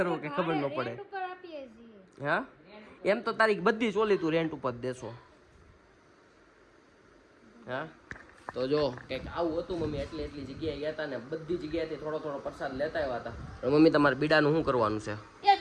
કે ખબર ન પડે. રેન્ટ ઉપર આપીએ છીએ. હા એમ તો તારી બધી ચોલી તું રેન્ટ ઉપર દેશો. હા તો જો કંઈક આવું હતું મમ્મી એટલી જગ્યાએ ગયા હતા ને બધી જગ્યાએથી થોડો થોડો પ્રસાદ લેતા આવ્યા હતા. પણ મમ્મી તમારે બીડાનું શું કરવાનું છે એક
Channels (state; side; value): identical; both; correlation 1.00